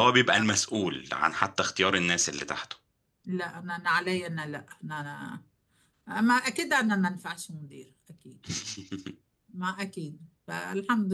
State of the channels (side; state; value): both; identical; correlation 1.00